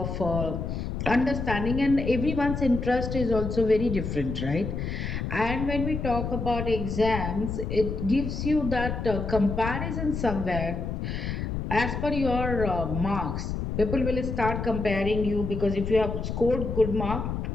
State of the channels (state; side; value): noise; left; rumble, 4 dB below the sound